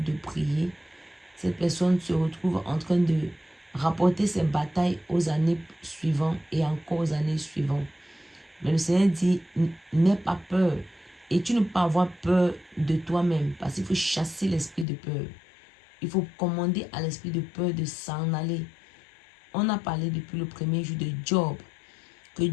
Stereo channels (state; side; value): drops out; right; at 14.9 s